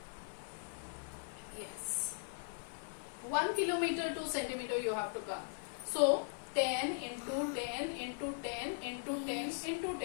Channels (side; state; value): right; silent; 52 dB below the other